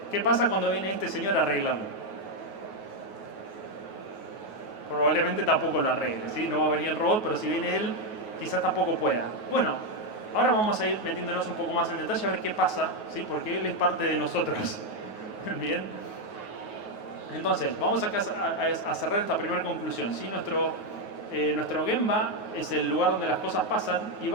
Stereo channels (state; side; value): late; right; 9.4 ms